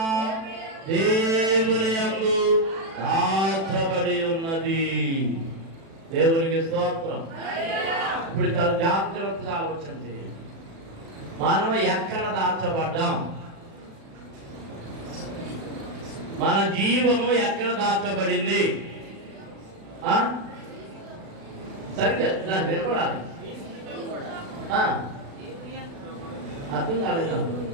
దేవుని యందు దాచబడి ఉన్నది. దేవునికి స్తోత్రం. ఇప్పుడు చాలా జాగ్రత్తగా ఆలోచన చేయండి. మనం ఎక్కడ దాచబడ్డాం? మన జీవము ఎక్కడ దాచబడింది? సరిగ్గా నాకు వినపడాలి. అర్థం కాలేదు.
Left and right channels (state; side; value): late; left; 36 ms